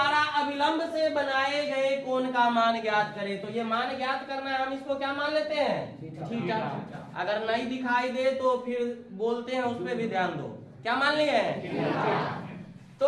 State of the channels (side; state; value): both; identical; correlation 1.00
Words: अभिलंब से बनाए गए कोण का मान ज्ञात करें। तो ये मान ज्ञात करना है, हम इसको क्या मान लेते हैं? थीटा। अगर नहीं दिखाई दे तो फिर बोलते हैं, उस पर भी ध्यान दो। क्या मान लिए? तो